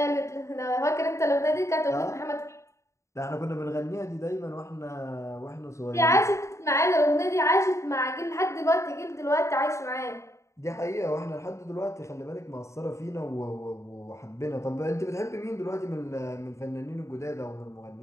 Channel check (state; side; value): late; right; 0.14 ms